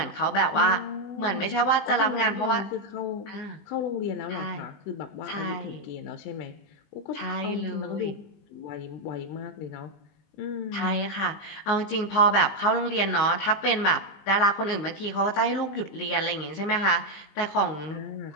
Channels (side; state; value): right; late; 20 ms